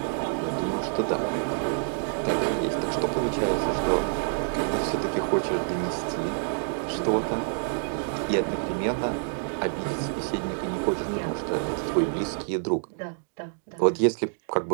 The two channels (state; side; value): silent; left; digital silence